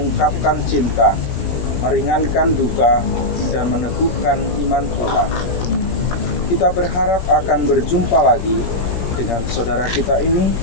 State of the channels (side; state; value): right; late; 17 ms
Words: cinta, meringankan duka, dan meneguhkan iman kita. Kita berharap akan berjumpa lagi dengan saudara kita ini